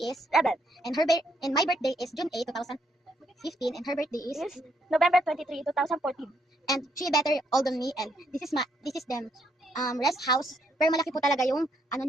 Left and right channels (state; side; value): normal; both; correlation 0.74